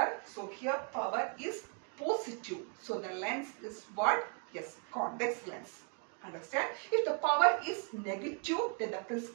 So here power is positive. So the lens is what? Yes, convex lens. Understand? If the power is negative, then the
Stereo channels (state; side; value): quieter; left; 37.9 dB